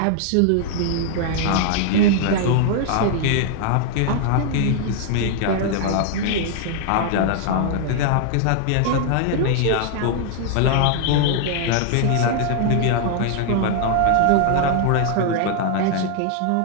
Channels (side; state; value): both; different; correlation 0.00